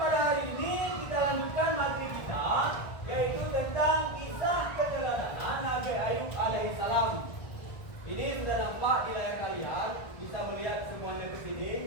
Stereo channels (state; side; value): late; right; 1.5 ms